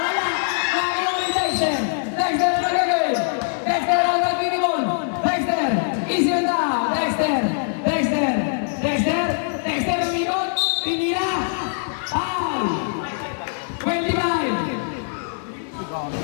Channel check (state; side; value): silent; right; 56 dB below the other